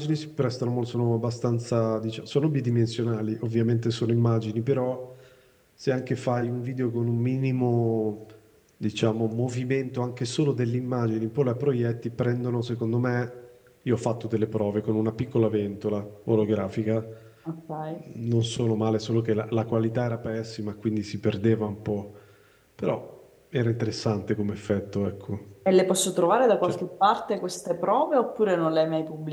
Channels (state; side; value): identical; both; correlation 1.00